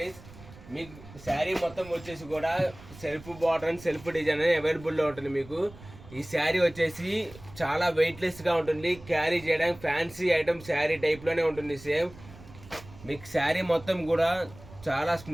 మీకు శారీ మొత్తం వచ్చేసి కూడా self border and self design అనేది అవైలబుల్లో ఉంటుంది. మీకు ఈ శారీ వచ్చేసి చాలా వెయిట్లెస్గా ఉంటుంది, క్యారీ చేయడానికి ఫ్యాన్సీ ఐటమ్ శారీ టైప్లోనే ఉంటుంది సేమ్. మీకు శారీ మొత్తం కూడా చాలా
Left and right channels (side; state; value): right; noise; rumble, 19 dB below the sound